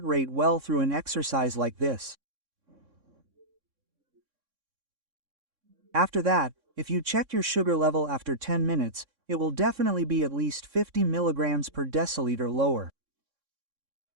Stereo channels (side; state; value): left; late; 3.6 ms